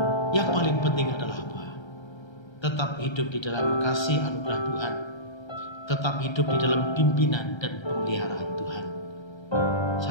yang paling penting adalah apa? Tetap hidup di dalam kasih anugerah Tuhan, tetap hidup di dalam pimpinan dan pemeliharaan Tuhan.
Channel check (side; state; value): right; late; 1.3 ms